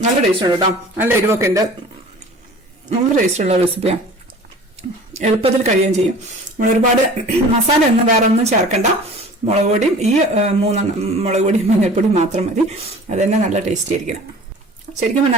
നല്ല ടേസ്റ്റ് ഉണ്ട് കേട്ടോ. നല്ല എരിവൊക്കെ ഉണ്ട്, നല്ല ടേസ്റ്റുള്ള റെസിപ്പിയാണ്. എളുപ്പത്തിൽ കഴിയുകയും ചെയ്യും. നമ്മൾ ഒരുപാട് മസാല ഒന്നും വേറെ ഒന്നും ചേർക്കണ്ട. മുളക് പൊടിയും ഈ 3 മുളക് പൊടിയും മഞ്ഞൾപ്പൊടിയും മാത്രം മതി. അത് തന്നെ നല്ല ടേസ്റ്റി ആയിരിക്കണം. ശരിക്കും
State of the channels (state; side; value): normal; both; correlation 0.43